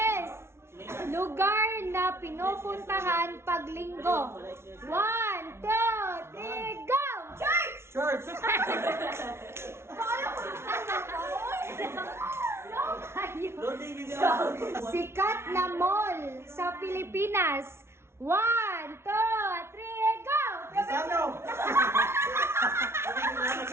is lugar na pinupuntahan pag linggo. 1, 2, 3, go! Church! Church! Sikat na mall sa Pilipinas. 1, 2, 3, go! Ano?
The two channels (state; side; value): late; left; 0.12 ms